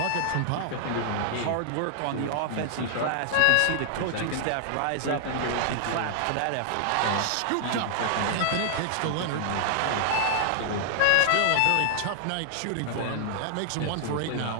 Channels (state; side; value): different; both; correlation -0.01